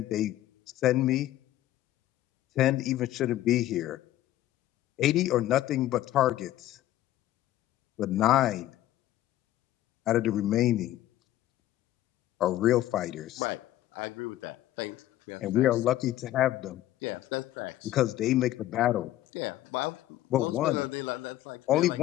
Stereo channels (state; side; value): quieter; right; 14.2 dB